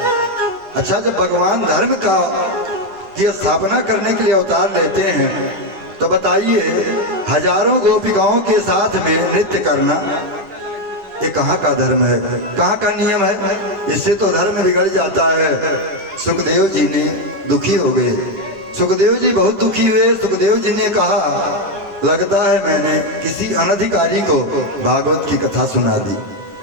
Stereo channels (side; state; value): left; late; 10 ms